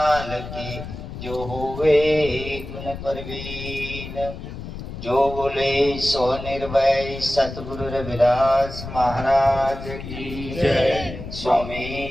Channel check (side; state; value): left; noise; rumble, 10 dB below the sound